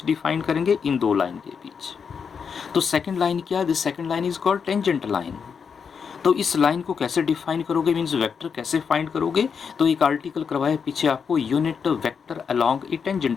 डिफाइन करेंगे? इन दो लाइन के बीच। तो सेकंड लाइन क्या है? This second line is called tangent line. तो इस लाइन को कैसे डिफाइन करोगे, मीन्स वेक्टर कैसे फाइंड करोगे? तो एक आर्टिकल करवाया पीछे आपको, यूनिट वेक्टर अलोंग ए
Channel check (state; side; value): quieter; right; 6.3 dB